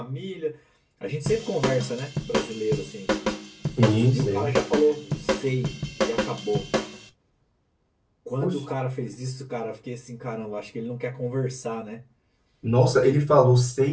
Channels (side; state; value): both; identical; correlation 1.00